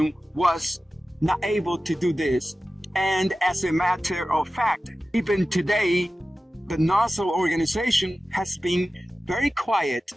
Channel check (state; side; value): normal; both; correlation 0.95